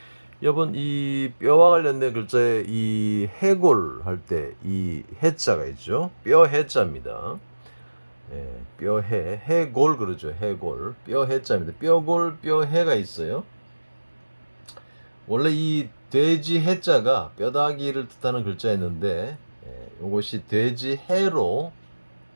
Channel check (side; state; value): both; inverted; correlation -1.00